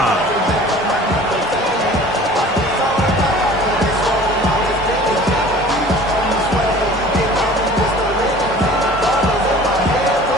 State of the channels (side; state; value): both; normal; correlation 0.45